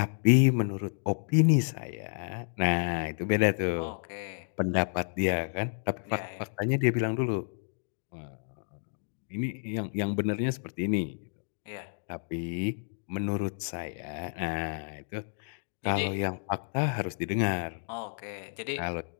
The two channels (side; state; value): right; silent; digital silence